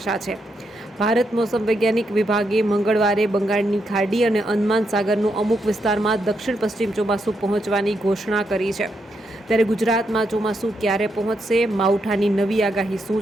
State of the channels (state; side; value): normal; both; correlation 0.81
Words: છે। ભારત મોસમ વૈજ્ઞાનિક વિભાગે મંગળવારે બંગાળની ખાડી અને અંદમાન સાગરનું અમુક વિસ્તારમાં દક્ષિણ પશ્ચિમ ચોમાસું પહોંચવાની ઘોષણા કરી છે। ત્યારે ગુજરાતમાં ચોમાસું ક્યારે પહોંચશે, માવઠાની નવી આગાહી શું